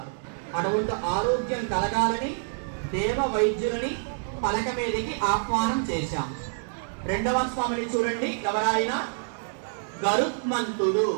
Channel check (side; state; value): left; silent; digital silence